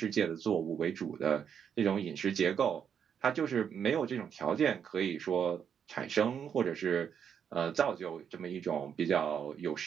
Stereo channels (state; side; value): quieter; left; 7.8 dB